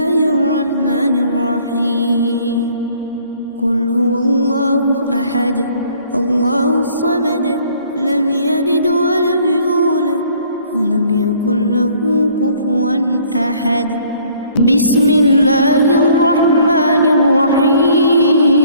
الرحمن الرحيم. قل هو الله أحد الله الصمد لم يلد ولم يولد ولم يكن له كفوا أحد. بسم الله الرحمن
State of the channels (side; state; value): both; inverted; correlation -0.59